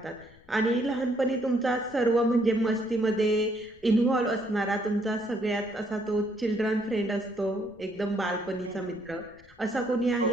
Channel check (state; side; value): noise; left; rumble, 27 dB below the sound